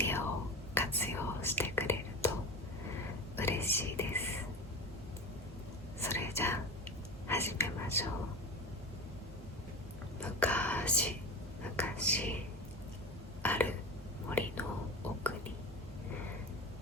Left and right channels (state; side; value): normal; both; correlation 0.28